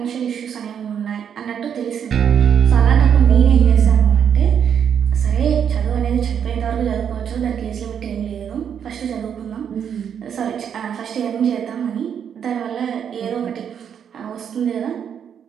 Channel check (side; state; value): left; quieter; 8.2 dB